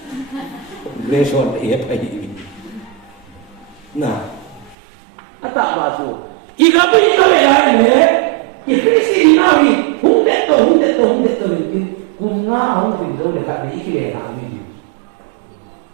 Kongres on iya ini. Nah, apa baju? Ika ya ini, Ikrisi dinawi, hundet to mungkin kunga aku tidak dekat di ikir ini.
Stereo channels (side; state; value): left; drops out; at 4.8 s